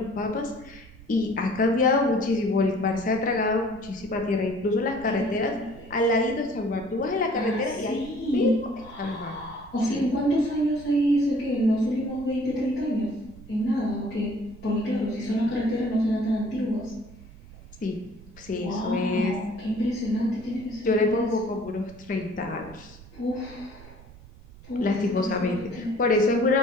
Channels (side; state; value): right; noise; rumble, 20 dB below the sound